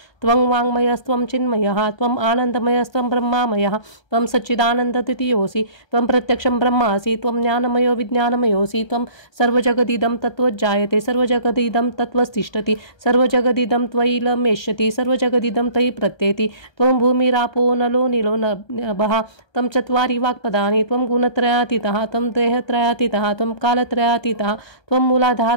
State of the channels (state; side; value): late; right; 1.3 ms